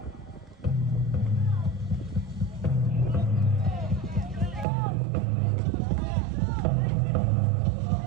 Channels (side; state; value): left; drops out; at 4.7 s